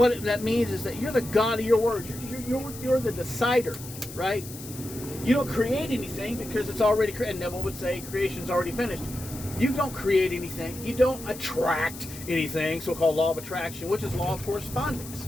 that means is that you're the God of your word. You're the decider, right? You don't create anything because it's already created. Neville would say creation's already finished. You don't create anything. You don't attract anything, so-called law of attraction, which is law of correspondence.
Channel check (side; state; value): left; noise; hiss, 14 dB below the sound